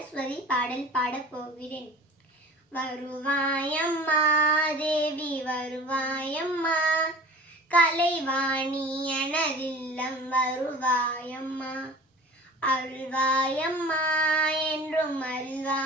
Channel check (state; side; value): normal; both; correlation 0.41